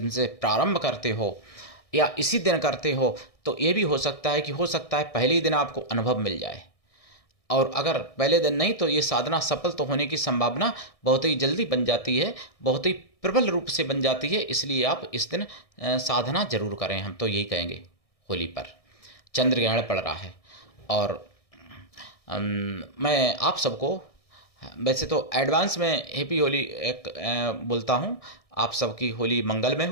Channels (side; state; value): right; late; 1.6 ms